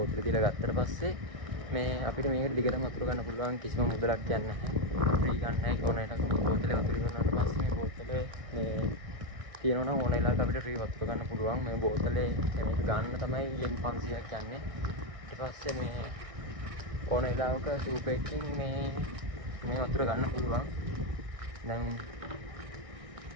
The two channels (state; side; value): late; left; 1.6 ms